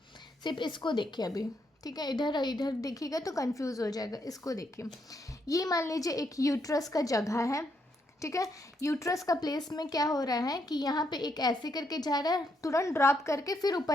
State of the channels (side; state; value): both; normal; correlation 0.77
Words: सिर्फ इसको देखिए अभी, ठीक है। इधर इधर देखिएगा तो कंफ्यूज हो जाएगा। इसको देखिए, ये मान लीजिए एक यूट्रस का जगह है, ठीक है। यूट्रस का प्लेस में क्या हो रहा है कि यहाँ पे एक ऐसे करके जा रहा है, तुरंत ड्रॉप करके फिर